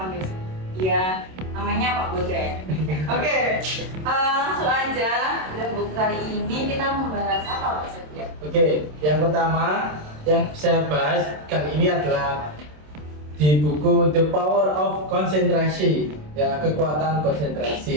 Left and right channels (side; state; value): left; late; 27 ms